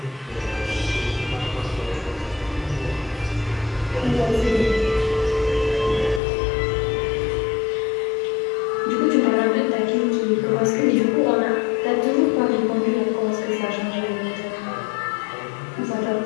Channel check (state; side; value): drops out; right; at 6.2 s